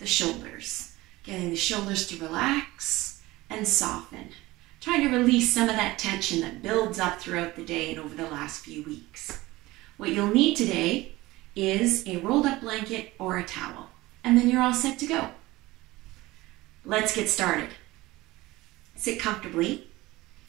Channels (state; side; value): quieter; left; 19.4 dB